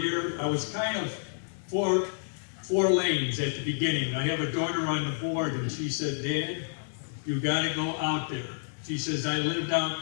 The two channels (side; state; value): right; silent; 58 dB below the other